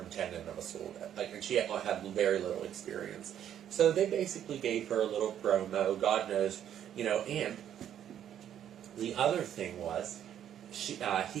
of a school. And she had very little experience. So they basically gave her a little promo, God knows, and the other thing was, he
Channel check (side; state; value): left; quieter; 10.1 dB